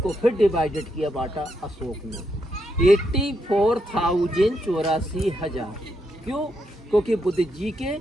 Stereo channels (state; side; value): normal; both; correlation 0.80